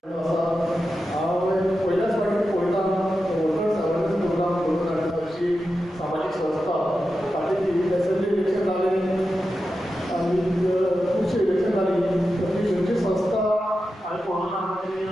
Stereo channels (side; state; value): both; normal; correlation 0.91